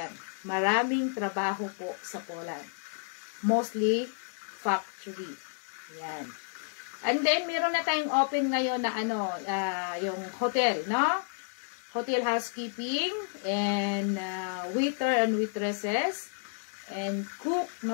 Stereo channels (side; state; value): right; silent; digital silence